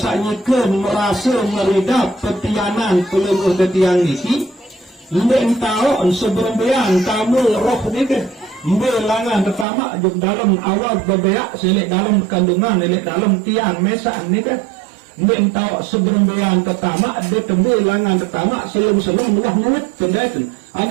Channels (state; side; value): drops out; left; at 9.7 s